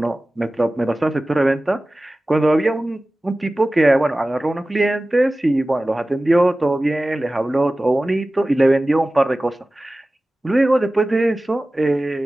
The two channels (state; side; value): normal; both; correlation 0.97